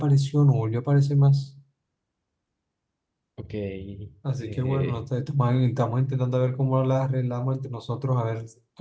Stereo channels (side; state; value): both; identical; correlation 1.00